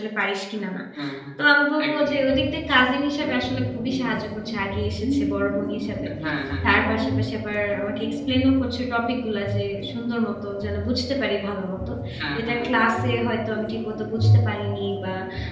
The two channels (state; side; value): identical; both; correlation 1.00